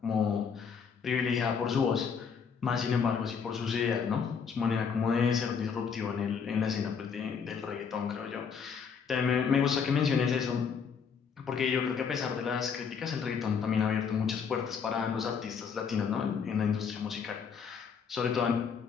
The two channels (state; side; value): quieter; right; 6.4 dB